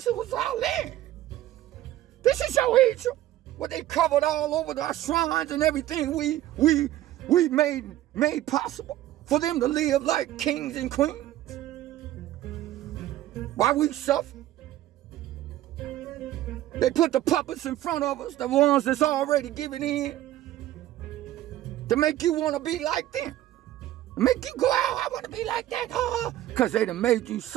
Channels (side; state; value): left; quieter; 13.9 dB